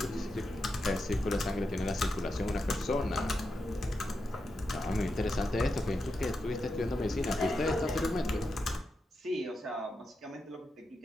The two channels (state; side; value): normal; both; correlation 0.87